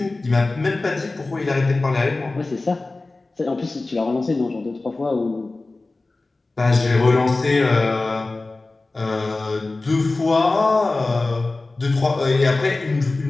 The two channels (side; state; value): right; quieter; 3.3 dB